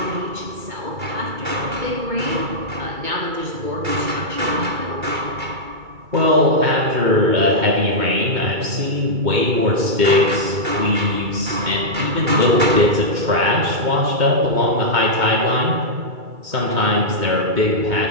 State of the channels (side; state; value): left; late; 2.3 ms